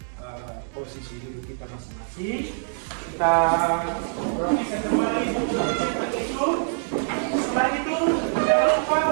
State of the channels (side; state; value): left; silent; digital silence